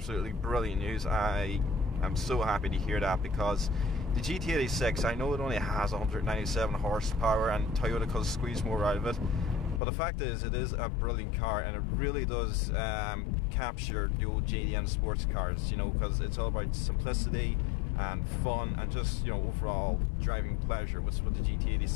brilliant news. I am so happy to hear that, because the GT86, I know it only has 197 horsepower and Toyota could squeeze more out of it, but the fact is, it is a brilliant car, and it really does capture the old JDM sports cars, you know, because it's all about simplicity and fun and just, you know, overall driving pleasure, which is what the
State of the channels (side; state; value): right; drops out; at 9.8 s